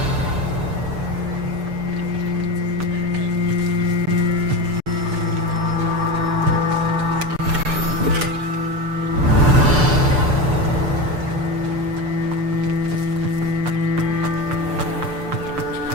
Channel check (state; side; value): late; left; 6.8 ms